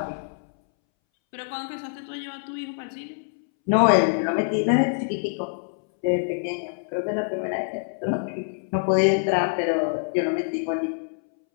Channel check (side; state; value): right; silent; 62 dB below the other